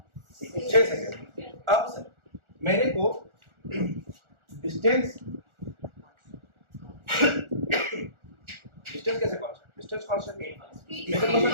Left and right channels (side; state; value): left; late; 1.4 ms